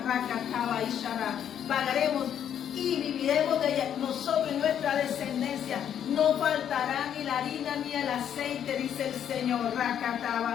pagaremos y viviremos de ella, nosotros y nuestra descendencia. No faltará ni la harina ni el aceite, dice el Señor.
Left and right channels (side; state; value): right; quieter; 9.3 dB